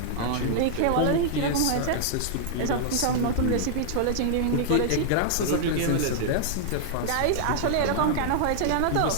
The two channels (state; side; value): different; both; correlation -0.01